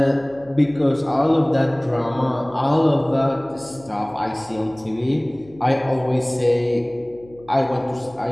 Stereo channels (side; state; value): left; noise; hum, 24 dB below the sound